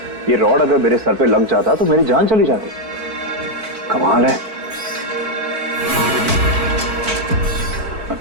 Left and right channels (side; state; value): left; late; 4.5 ms